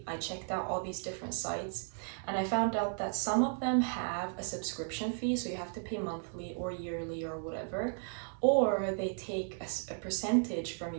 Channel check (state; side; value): silent; left; 55 dB below the other